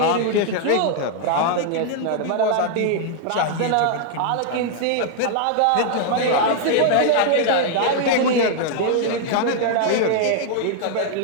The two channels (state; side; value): different; both; correlation 0.00